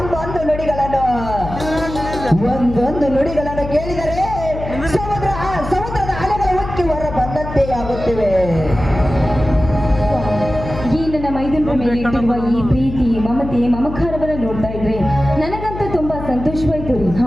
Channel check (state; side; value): noise; left; hum, 9 dB below the sound